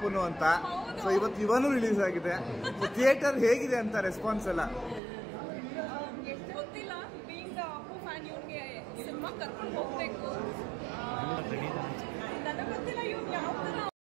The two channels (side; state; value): left; drops out; at 5.0 s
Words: ಅಂತ. ಸೊ ಇವತ್ತು ಇವನು ರಿಲೀಸ್ ಆಗಿದೆ. ಥಿಯೇಟರ್ ಹೇಗಿದೆ ಅಂತ ರೆಸ್ಪಾನ್ಸ್ ಎಲ್ಲ? ಗೊತ್ತಿಲ್ಲ. ಬೀಂಗ್ ಅಪ್ಪು ಫ್ಯಾನ್ ಇವನಿಗೆ ಸಿನಿಮಾ ಕರ್ಕೊಂಡು ಹೋಗ್ಬೇಕು. ನನಗೆ ಗೊತ್ತಿಲ್ಲ ಇವ್ನು ಯಾವ ಥರ